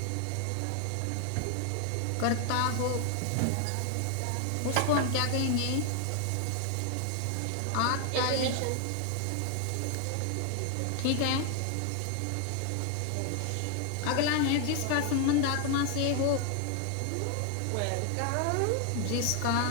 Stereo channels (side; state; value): both; different; correlation 0.00